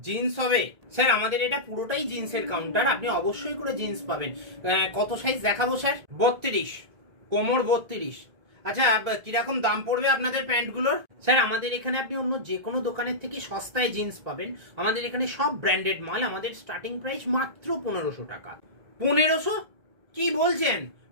হবে? স্যার আমাদের এটা পুরোটাই জিন্সের কাউন্টার, আপনি অবশ্যই করে জিন্স পাবেন। কত সাইজ দেখাবো স্যার? 32, কোমর 32। আচ্ছা কিরকম দাম পড়বে আপনাদের প্যান্টগুলোর? স্যার আমাদের এখানে আপনি অন্য যে কোনো দোকানের থেকে সস্তায় জিন্স পাবেন। আমাদের এখানে সব ব্র্যান্ডেড মাল, আমাদের স্টার্টিং প্রাইস মাত্র 1500 টাকা। 1500? কি বলছেন?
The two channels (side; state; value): left; late; 1.9 ms